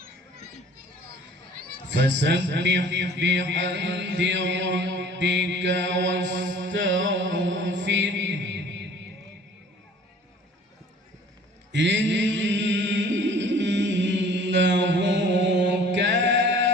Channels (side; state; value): both; normal; correlation 0.50